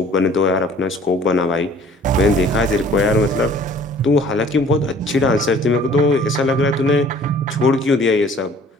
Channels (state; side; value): normal; both; correlation 0.52